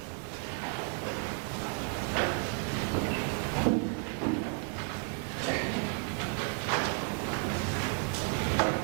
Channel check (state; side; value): quieter; left; 37.5 dB